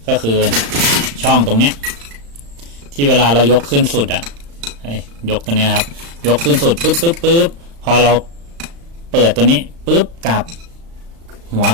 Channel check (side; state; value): left; late; 35 ms